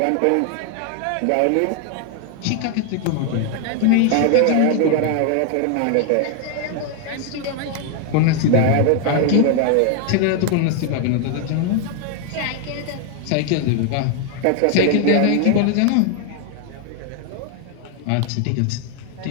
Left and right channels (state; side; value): different; both; correlation 0.01